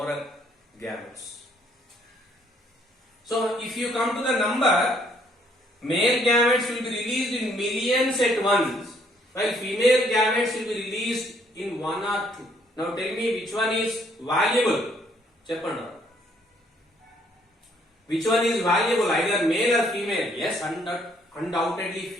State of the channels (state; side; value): normal; both; correlation 0.66